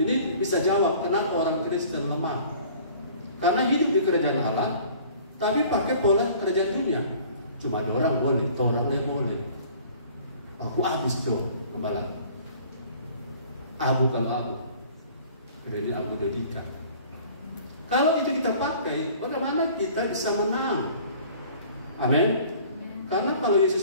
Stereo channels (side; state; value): both; inverted; correlation -0.50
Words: ini bisa jawab kenapa orang Kristen lemah. Karena hidup di kerajaan Allah, tapi pakai pola kerajaan dunia. Cuma ada orang boleh, orangnya boleh. Aku habis tuh kembali. Abu kalau Abu, kemudian Abu Dodika. Kalau itu kita pakai, bagaimana kita bisa menang? Amin. Karena kalau